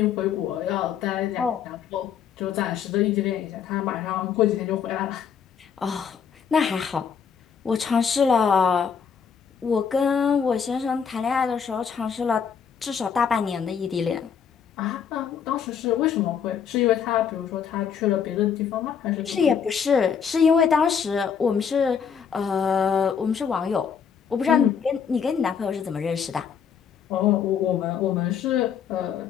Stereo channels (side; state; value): right; quieter; 7.2 dB